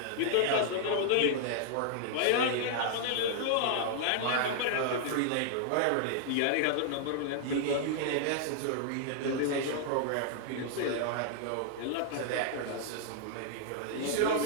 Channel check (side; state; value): both; different; correlation -0.01